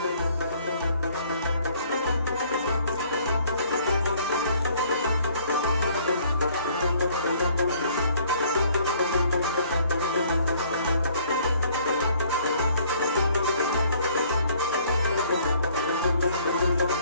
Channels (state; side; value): inverted; both; correlation -0.59